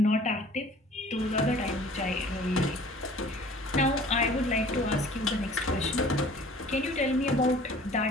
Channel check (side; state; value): both; normal; correlation 0.49